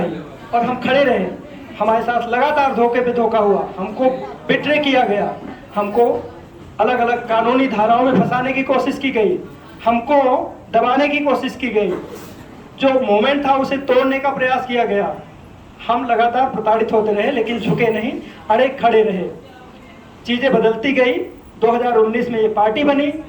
और हम खड़े रहे। हमारे साथ लगातार धोखे पे धोखा हुआ, हमको बिट्रे किया गया, हमको अलग अलग कानूनी धाराओं में फंसाने की कोशिश की गई, हमको दबाने की कोशिश की गई, जो मोमेंट था उसे तोड़ने का प्रयास किया गया। हम लगातार प्रताड़ित होते रहे लेकिन झुके नहीं, अड़े खड़े रहे। चीज़ें बदलती गई। 2019 में ये पार्टी बनी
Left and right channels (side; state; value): both; identical; correlation 1.00